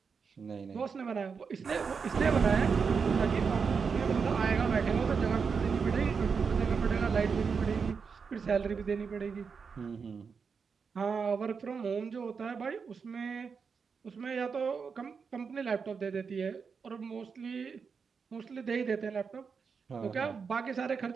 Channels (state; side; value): quieter; left; 5.7 dB